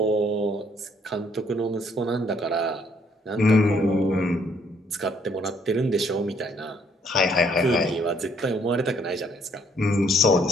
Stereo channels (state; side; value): normal; both; correlation 0.66